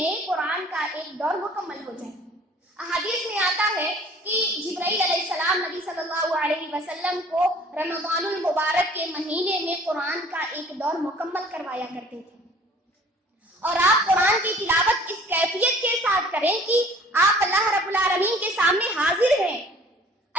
قرآن کا ایک دور مکمل ہو جائے۔ احادیث میں آتا ہے کہ جبرائیل علیہ السلام نبی صلی اللہ علیہ وسلم کو رمضان المبارک کے مہینے میں قرآن کا ایک دور مکمل کروایا کرتے تھے، اور آپ قرآن کی تلاوت اس کیفیت کے ساتھ کریں کہ آپ اللہ رب العالمین کے سامنے حاضر ہیں۔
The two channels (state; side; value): normal; both; correlation 0.52